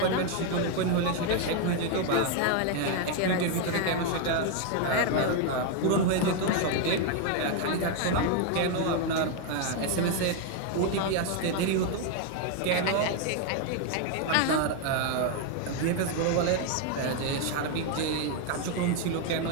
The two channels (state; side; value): different; both; correlation 0.01